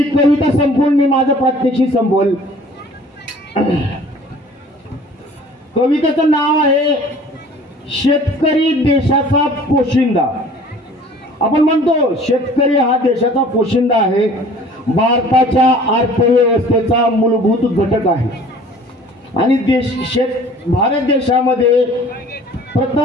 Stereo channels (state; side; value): normal; both; correlation 0.49